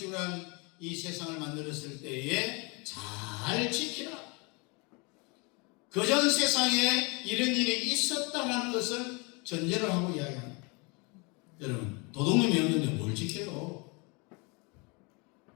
한 이 세상을 만들었을 때에 잘 지키라. 그전 세상에 이런 일이 있었다는 것을 전제를 하고 이야기합니다. 여러분, 도둑놈이 없는데 뭘 지켜요?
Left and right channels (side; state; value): right; quieter; 29.9 dB